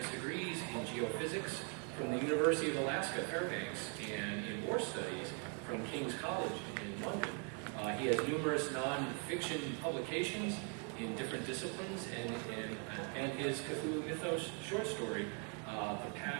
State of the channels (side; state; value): left; quieter; 39.8 dB